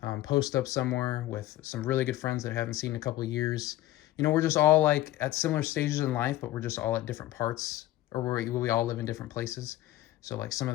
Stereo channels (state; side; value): quieter; right; 15.1 dB